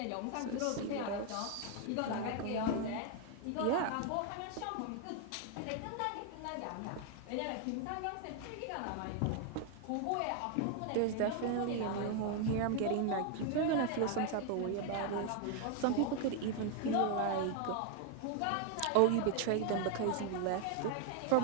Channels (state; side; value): different; both; correlation 0.01